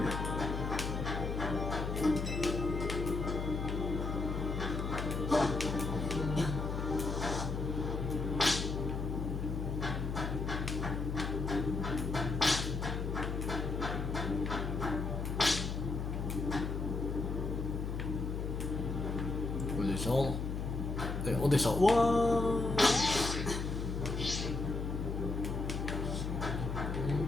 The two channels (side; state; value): left; noise; hum, 2 dB below the sound